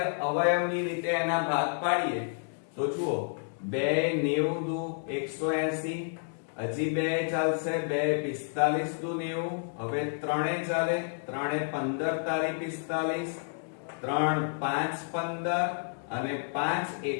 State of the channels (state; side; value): silent; right; digital silence